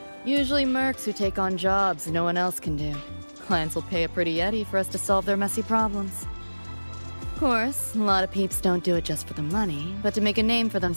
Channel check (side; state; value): both; inverted; correlation -1.00